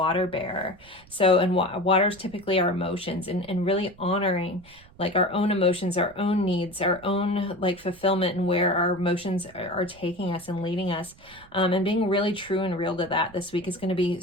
bearer. So, and water is typically our emotions, and really honoring like our own emotions, our own needs, our own like fulfillment, and where our emotions are taking us and leading us. And being really true and real to that this week is going to be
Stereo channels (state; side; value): noise; right; rumble, 25 dB below the sound